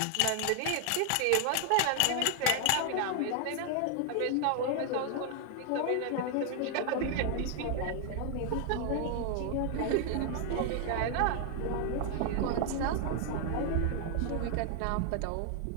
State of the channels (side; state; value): both; different; correlation 0.00